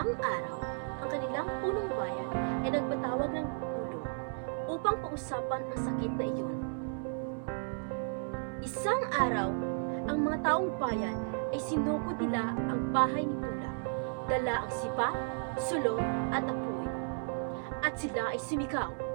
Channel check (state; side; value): silent; left; 55 dB below the other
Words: araw, ang kanilang punong bayan ay nagpatawag ng pulong upang pag-usapan ang sakit na iyon. Isang araw, ang mga taong bayan ay sinukod nila ang bahay ni Bulak, dala ang sipa, sulong at apoy. At sila ay sumigaw,